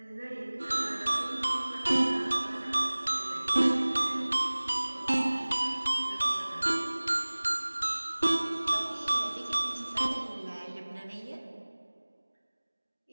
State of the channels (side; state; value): both; inverted; correlation -1.00